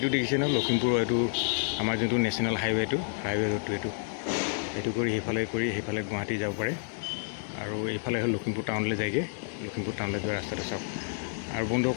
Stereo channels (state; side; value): silent; right; 58 dB below the other